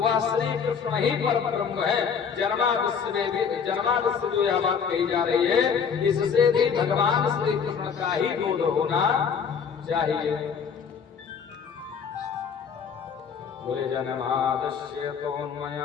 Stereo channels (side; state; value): right; quieter; 6.6 dB